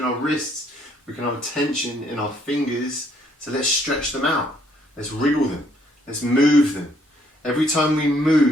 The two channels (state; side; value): normal; both; correlation 0.67